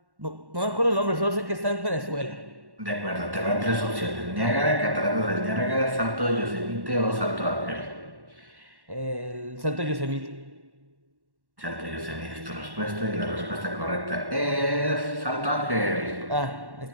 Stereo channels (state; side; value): late; left; 1.1 ms